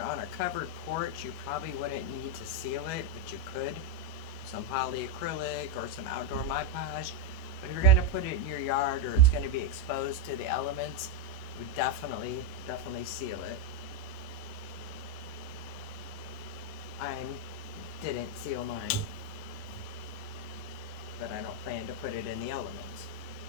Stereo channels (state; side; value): late; right; 19 ms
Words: on a covered porch, you probably wouldn't need to seal it, but you could. Some polyacrylic or some outdoor Mod Podge. But if you're going to put it in your yard or it's going to be exposed to the elements, you would definitely seal it. I didn't seal mine, but I don't plan to put it in the elements.